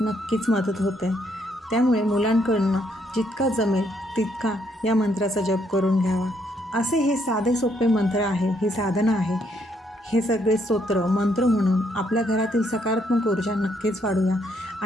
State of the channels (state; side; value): normal; both; correlation 0.72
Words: मदत होते. त्यामुळे मुलांकडनं जितका जमेल तितका या मंत्राचा जप करून घ्यावा. असे हे साधे सोपे मंत्र आहे, ही साधना आहे. हे सगळे स्तोत्र मंत्र म्हणून आपल्या घरातील सकारात्मक ऊर्जा नक्कीच वाढूया